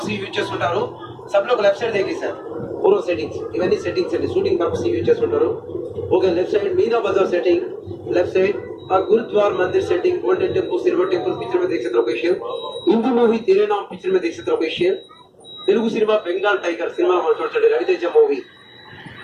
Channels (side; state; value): both; identical; correlation 1.00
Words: యూజ్ చేస్తుంటారు. सब लोग लेफ्ट साइड देखिए सर पूरा सेटिंग्स इवన్నీ సెట్టింగ్స్ అండి, షూటింగ్ పర్పస్ యూజ్ చేస్తుంటారు. ఓకే, లెఫ్ట్ సైడ్ मीना बाजार सेटिंग, लेफ्ट साइड और गुरुद्वार मंदिर setting, golden temple, silver temple picture में देख सकते लोकेशन. हिंदी मूवी तेरे नाम पिक्चर में देख सकते location. Telugu cinema Bengal Tiger cinema మనం చూడండి, రవితేజ మూవీ.